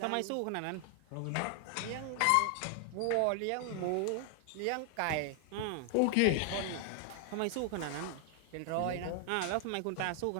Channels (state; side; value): different; both; correlation 0.00